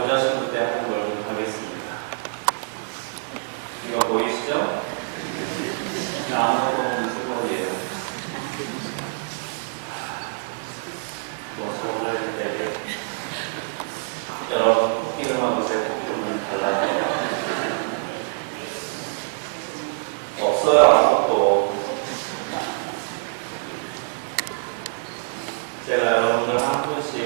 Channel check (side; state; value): left; silent; digital silence